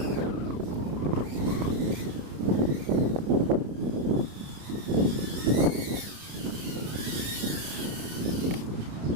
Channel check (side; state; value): left; late; 30 ms